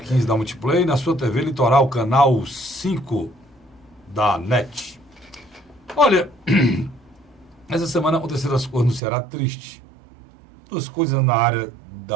da Multiplay, na sua TV Litoral, canal 5 da NET. Olha, essa semana aconteceram as coisas no Ceará tristes. Duas coisas na área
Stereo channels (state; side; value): drops out; left; at 9.0 s